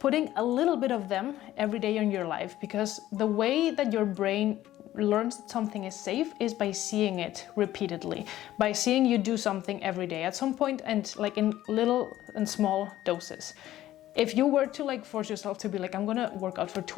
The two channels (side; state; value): right; quieter; 14.0 dB